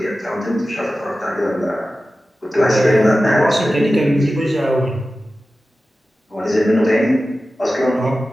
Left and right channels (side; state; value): both; normal; correlation 0.94